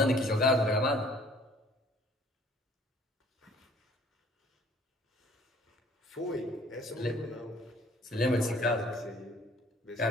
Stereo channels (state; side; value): normal; both; correlation 0.56